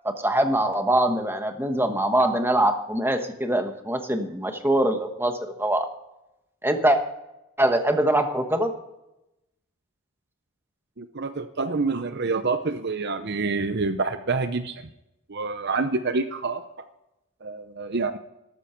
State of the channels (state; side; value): normal; both; correlation 0.53